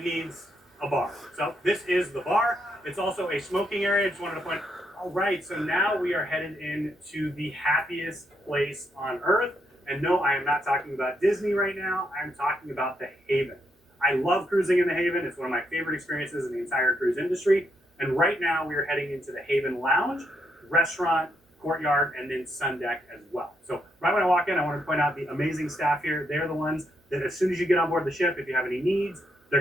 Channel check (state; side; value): normal; both; correlation 0.78